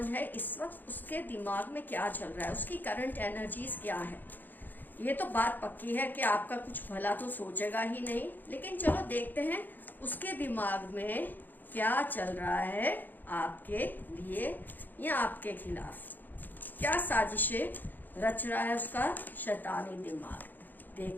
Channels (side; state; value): right; late; 0.087 ms